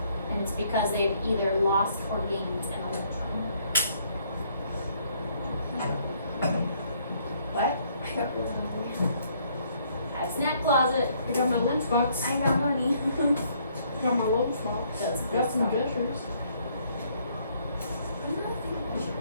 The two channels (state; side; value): inverted; both; correlation -0.66